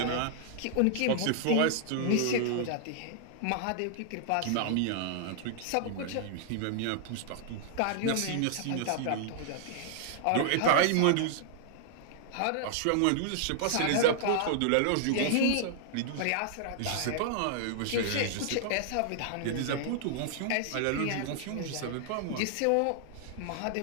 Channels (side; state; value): both; different; correlation -0.01